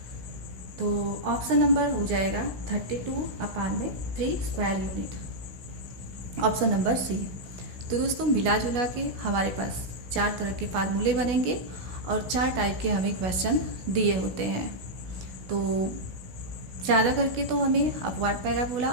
तो ऑप्शन नंबर हो जाएगा 32/3 square unit, option number C. तो दोस्तों मिला जुला के हमारे पास 4 तरह के फार्मूले बनेंगे और 4 टाइप के हमें क्वेश्चन दिए होते हैं। तो ज़्यादा करके तो हमें अपवर्ड पैराबोला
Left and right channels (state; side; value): late; left; 16 ms